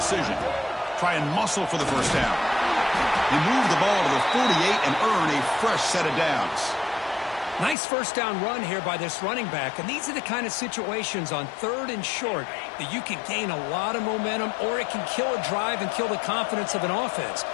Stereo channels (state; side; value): drops out; right; at 7.8 s